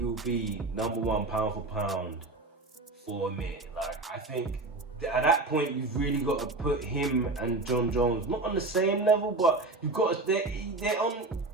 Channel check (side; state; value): left; quieter; 3.2 dB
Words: will be #1 pound for pound for a minute. Like, I think at that point, you've really got to put him and John Jones not on the same level, but you've got to, they're on.